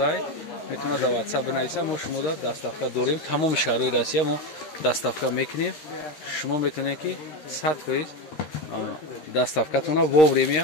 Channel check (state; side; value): late; right; 13 ms